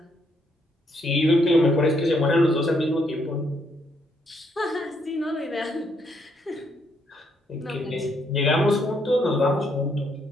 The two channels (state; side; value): normal; both; correlation 0.73